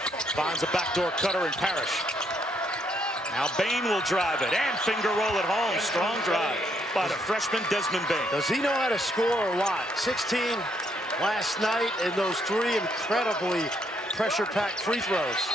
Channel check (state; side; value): normal; both; correlation 0.73